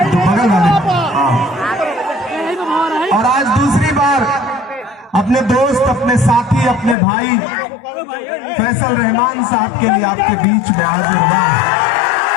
तो बगल वाले। और आज दूसरी बार अपने दोस्त, अपने साथी, अपने भाई फैसल रहमान साहब के लिए आपके बीच में हाजिर हुआ।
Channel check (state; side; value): drops out; right; at 7.0 s